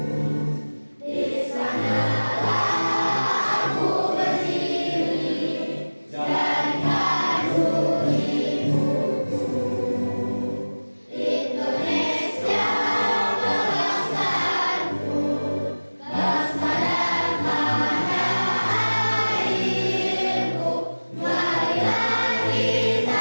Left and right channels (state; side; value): inverted; both; correlation -1.00